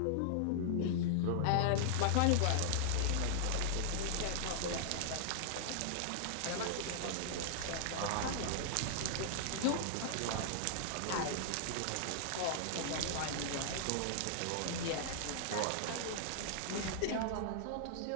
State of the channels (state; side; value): different; both; correlation -0.01